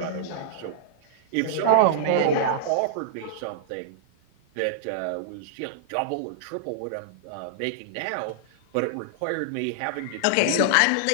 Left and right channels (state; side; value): different; both; correlation -0.02